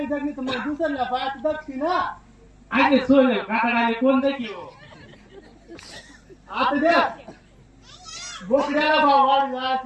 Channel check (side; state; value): both; identical; correlation 1.00